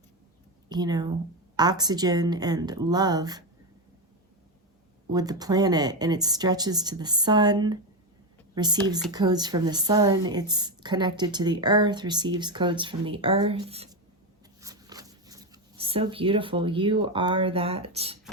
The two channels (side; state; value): both; normal; correlation 0.11